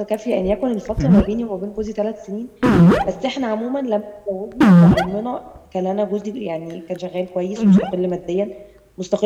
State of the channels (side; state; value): both; identical; correlation 1.00